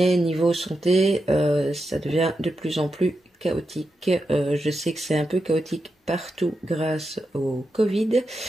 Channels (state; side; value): normal; both; correlation 0.87